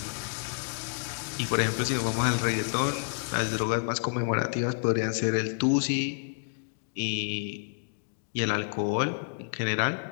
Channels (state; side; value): silent; right; digital silence